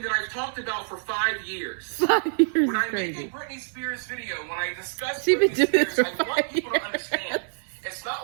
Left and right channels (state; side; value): silent; left; 57 dB below the other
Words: that I've talked about for 5 years. 5 years when I crazy. make a Britney Spears video, when I discuss Britney Spears, I want people to understand. It's not